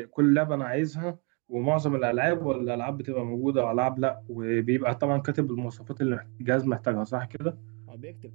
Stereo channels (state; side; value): quieter; left; 34.1 dB